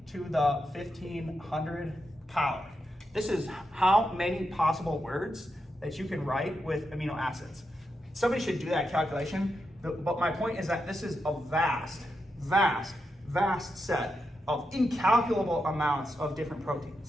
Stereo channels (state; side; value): normal; both; correlation 0.86